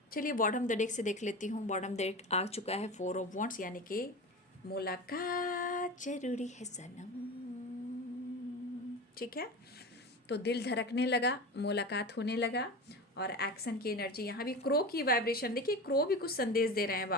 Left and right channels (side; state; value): both; normal; correlation 0.28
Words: चलिए बॉटम द डेक से देख लेती हूँ। बॉटम डेक आ चुका है 4 ऑफ वॉन्ड्स, यानी कि मुलाकात जरूरी है सनम, ठीक है। तो दिल धड़कने लगा, मुलाकात होने लगा, और एक्शन की एनर्जी, यहाँ भी क्रो की वाइब्रेशन, देखिए क्रो भी कुछ संदेश दे रहे हैं